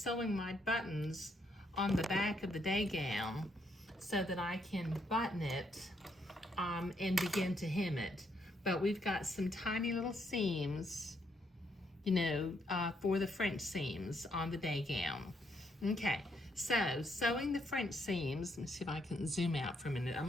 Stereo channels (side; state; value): both; normal; correlation 0.75